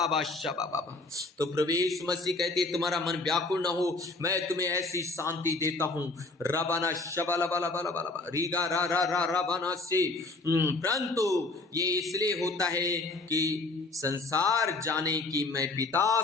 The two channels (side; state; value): right; quieter; 3.3 dB